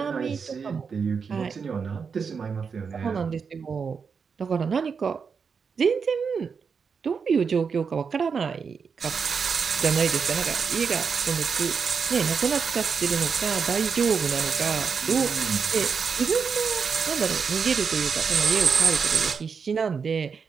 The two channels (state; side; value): quieter; left; 5.9 dB